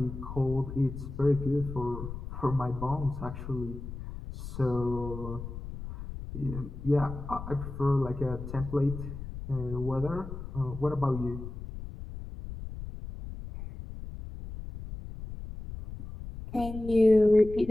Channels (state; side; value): noise; left; rumble, 9 dB below the sound